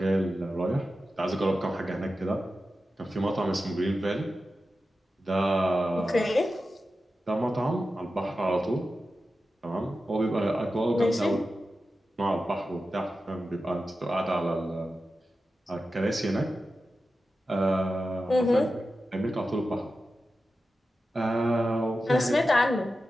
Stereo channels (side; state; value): both; normal; correlation 0.92